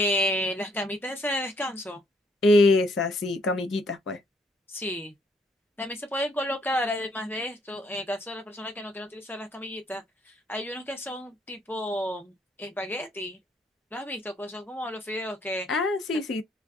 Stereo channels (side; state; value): both; normal; correlation 0.68